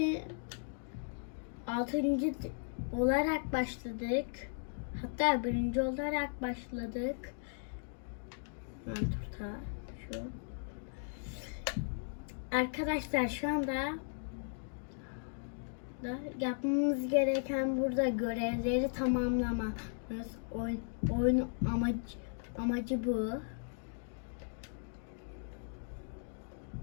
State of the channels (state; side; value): silent; right; digital silence